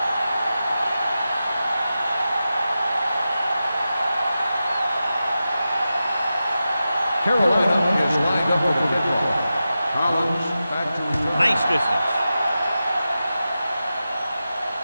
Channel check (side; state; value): both; inverted; correlation -0.92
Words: Carolina is lined up for the kickoff. Collins back to return. Nice distance.